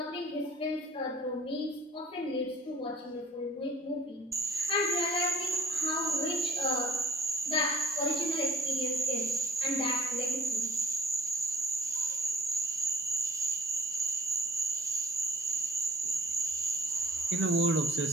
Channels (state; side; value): normal; both; correlation 0.55